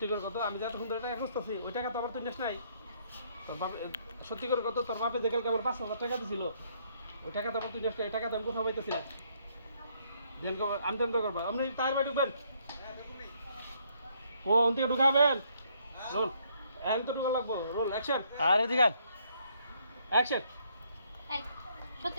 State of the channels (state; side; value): inverted; both; correlation -0.68